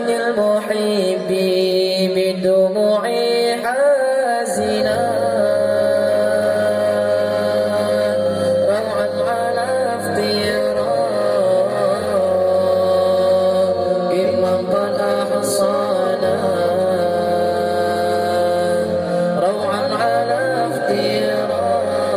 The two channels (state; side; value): identical; both; correlation 1.00